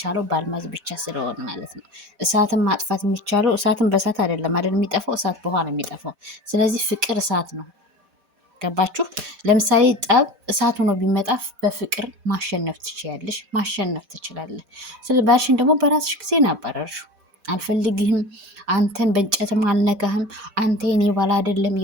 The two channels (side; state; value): left; late; 4.1 ms